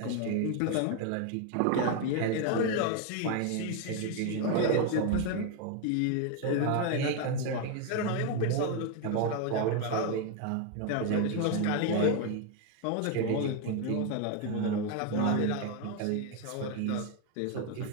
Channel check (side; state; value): both; different; correlation 0.01